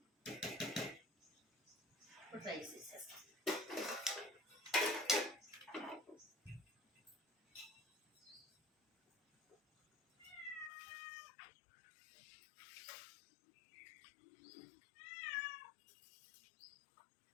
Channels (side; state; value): right; drops out; at 10.7 s